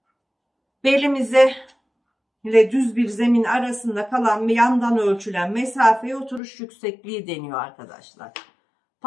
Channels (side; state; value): right; drops out; at 6.4 s